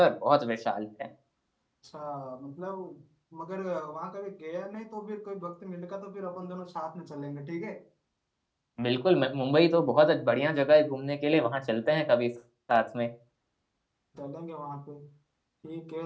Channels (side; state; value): both; identical; correlation 1.00